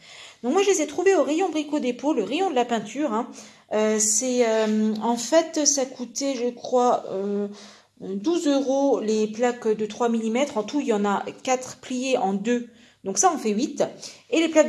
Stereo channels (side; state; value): both; identical; correlation 1.00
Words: Donc moi je les ai trouvées au rayon Brico Dépôt, le rayon de la peinture. En fait ça coûtait je crois 12 € les plaques de 3 mm. En tout, il y en a 4 pliées en 2. Donc ça, on fait 8. Et les